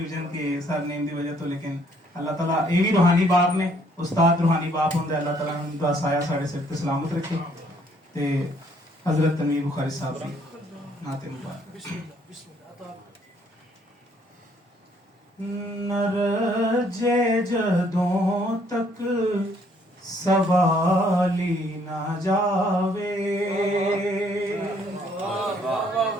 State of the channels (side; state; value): both; normal; correlation 0.65